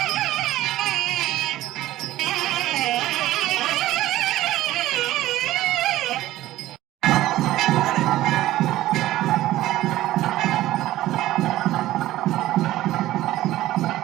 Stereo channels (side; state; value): left; quieter; 15.3 dB